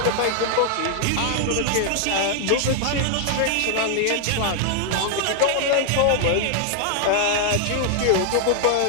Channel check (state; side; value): different; both; correlation 0.00